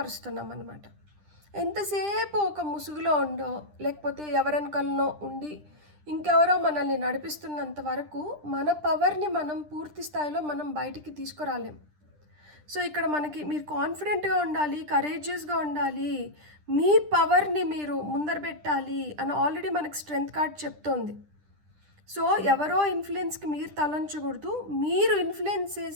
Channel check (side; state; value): left; late; 10 ms